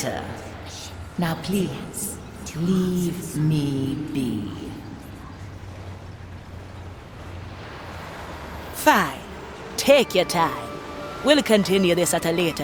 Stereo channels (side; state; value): both; identical; correlation 1.00